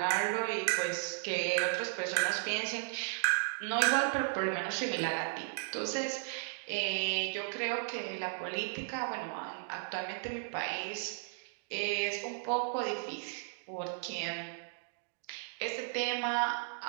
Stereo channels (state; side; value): silent; left; digital silence